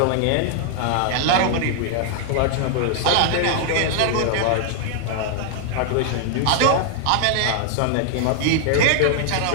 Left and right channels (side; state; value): both; different; correlation 0.00